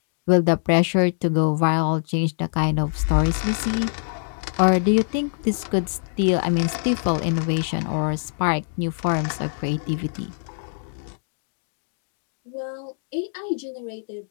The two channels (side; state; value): right; silent; digital silence